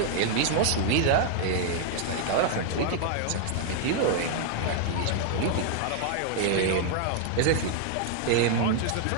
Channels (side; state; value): both; different; correlation 0.00